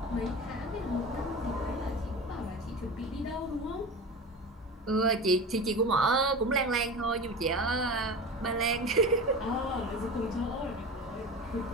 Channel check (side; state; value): both; normal; correlation 0.30